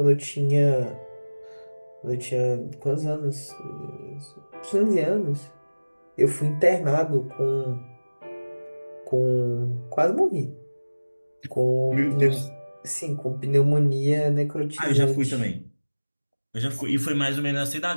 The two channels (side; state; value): both; inverted; correlation -1.00